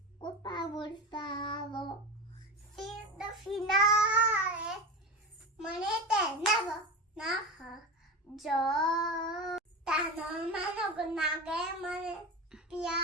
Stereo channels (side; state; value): both; normal; correlation 0.24